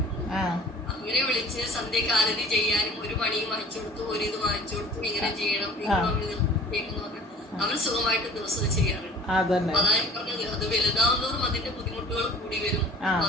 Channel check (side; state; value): both; normal; correlation 0.47